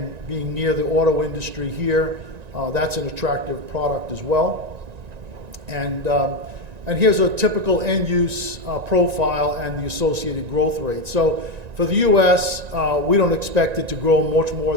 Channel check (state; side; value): late; left; 1.9 ms